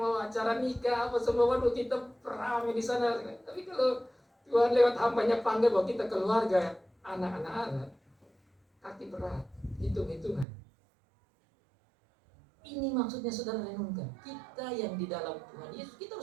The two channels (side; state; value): left; drops out; at 10.5 s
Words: acara nikah, apa semua, waduh kita rame di sana. Tapi kalau Tuhan lewat hambanya panggil bahwa kita keluarga, anak-anak Allah, kaki berat, hitung-hitungan. Ini maksudnya saudara renungkan. Kita yang di dalam Tuhan Yesus, kita